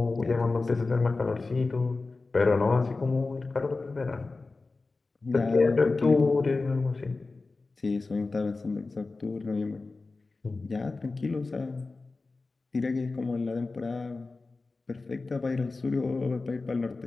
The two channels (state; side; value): quieter; right; 3.7 dB